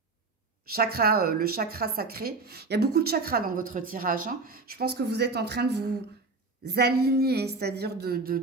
chakra, le chakra sacré, il y a beaucoup de chakras dans votre tirage. Hein. Je pense que vous êtes en train de vous aligner, c'est-à-dire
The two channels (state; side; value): quieter; left; 3.8 dB